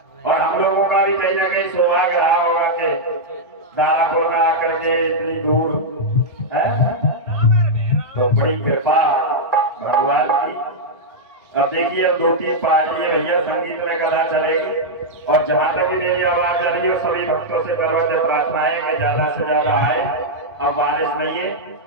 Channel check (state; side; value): normal; both; correlation -0.05